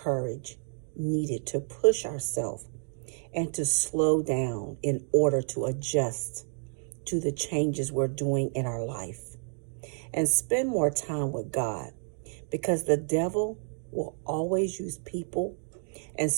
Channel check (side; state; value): left; silent; 56 dB below the other